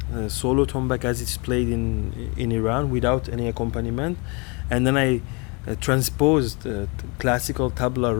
solo tombak as it's played in Iran without any accompaniment, and then I transposed classical tabla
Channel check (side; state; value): right; quieter; 30.6 dB